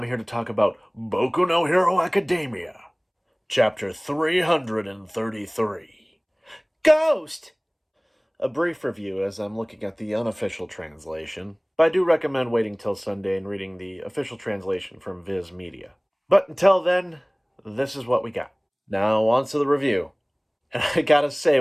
here to talk about Boku no Hero Academia, Chapter 333. Ghost! A brief review as I'm looking at the unofficial translation, but I do recommend waiting till Sunday and reading the official translation from Viz Media. But until then, this is what we got. Now, on to the review. And I gotta say,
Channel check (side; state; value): both; identical; correlation 1.00